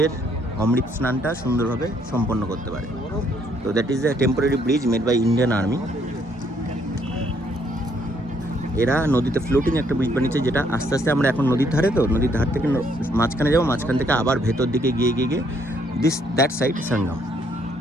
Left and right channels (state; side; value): normal; both; correlation 0.69